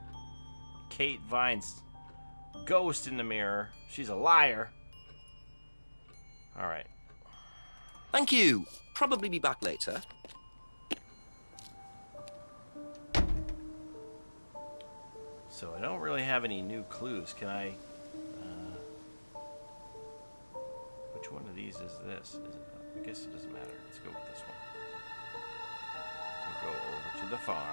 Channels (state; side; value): inverted; both; correlation -1.00